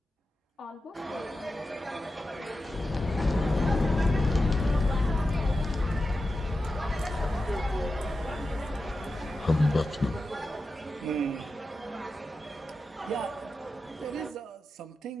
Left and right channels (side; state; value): both; normal; correlation 0.91